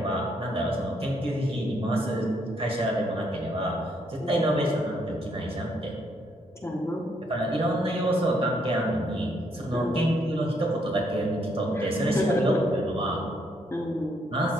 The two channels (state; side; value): normal; both; correlation 0.72